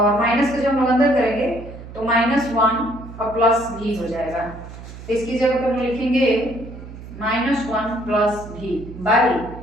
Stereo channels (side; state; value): right; noise; hum, 14 dB below the sound